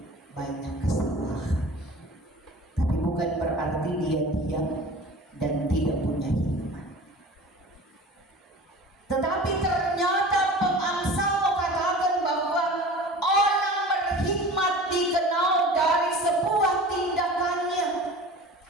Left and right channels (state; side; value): normal; both; correlation 0.39